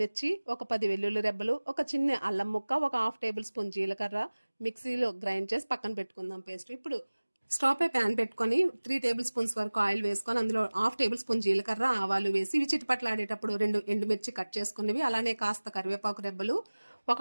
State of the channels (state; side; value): inverted; both; correlation -1.00